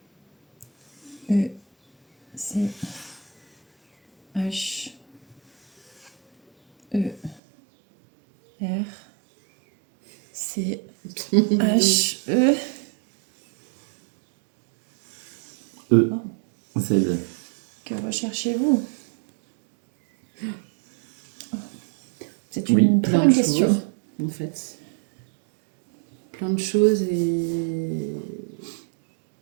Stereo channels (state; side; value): drops out; left; at 7.4 s